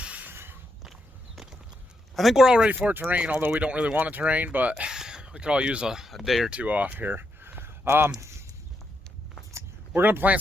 I think we're all ready for it to rain, although we don't really want it to rain, but we could all use a day or two off here. We're going to plant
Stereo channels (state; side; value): normal; both; correlation 0.81